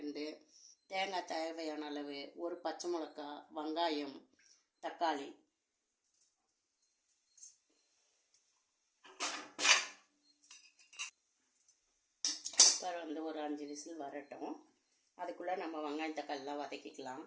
தேங்காய் தேவையான அளவு, ஒரு பச்சை மிளகா, வெங்காயம், தக்காளி. குக்கர் ஒரு 5 விசில் வரட்டும். அதுக்குள்ளே நம்ம வெங்காயம் தக்காளிலாம் வதக்கிக்கலாம்.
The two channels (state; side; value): identical; both; correlation 1.00